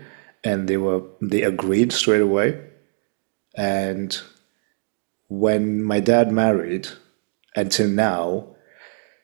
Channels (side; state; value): left; silent; digital silence